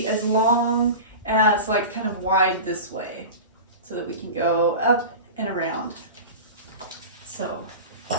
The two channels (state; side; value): inverted; both; correlation -0.31